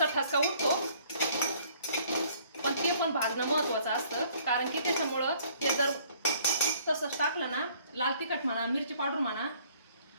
ठसका उठतो, पण ते पण भाजणं महत्वाचं असतं, कारण की त्याच्यामुळं ते जर तसंच टाकलं ना, लाल तिखट म्हणा, मिरची पावडर म्हणा,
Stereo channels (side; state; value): both; inverted; correlation -0.59